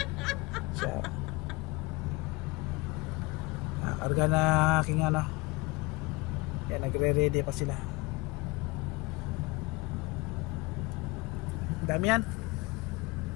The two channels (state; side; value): quieter; right; 23.9 dB